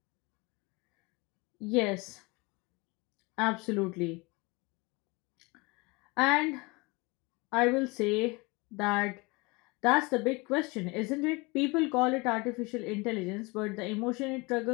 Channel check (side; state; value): right; quieter; 26.2 dB